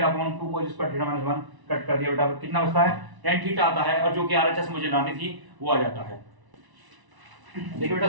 upon 2 cos square theta minus 1 cut कर दिया बेटा, कितना बचता है, tan थीटा आता है, और जो कि RHS मुझे लानी थी वो आ जाता है। देखिए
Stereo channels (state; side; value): late; left; 1.0 ms